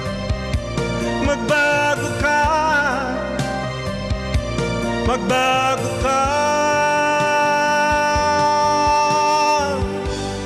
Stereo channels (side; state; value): both; identical; correlation 1.00